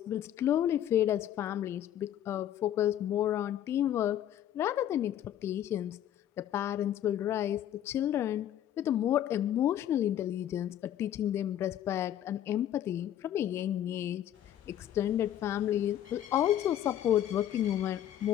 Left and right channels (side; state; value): right; quieter; 11.2 dB